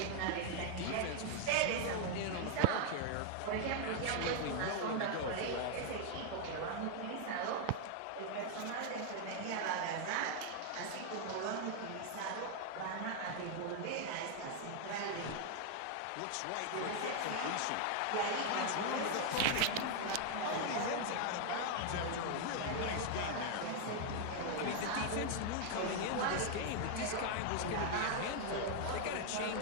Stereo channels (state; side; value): different; both; correlation 0.00